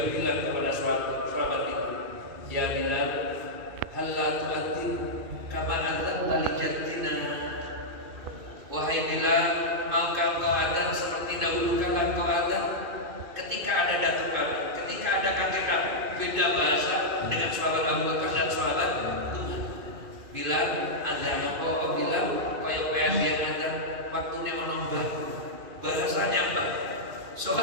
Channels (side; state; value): left; late; 2.5 ms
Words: bilang kepada sahabat itu, ya Bilal, hal la tu'adzin kama adzanta li jaddina. Wahai Bilal, maukah kau adzan seperti dahulu kala kau adzan? Ketika ada datuk kami, ketika ada kakek kami, beda bahasa dengan sahabat Abu Bakar dan sahabat Umar. Bilal adzan kau bilang kaya kaya dia adzan waktunya menombar bahasanya apa?